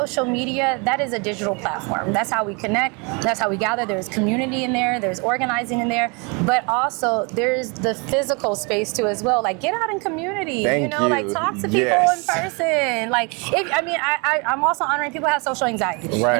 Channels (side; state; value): left; quieter; 31.4 dB